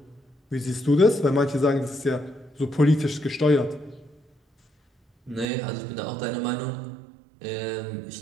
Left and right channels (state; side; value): drops out; left; at 5.5 s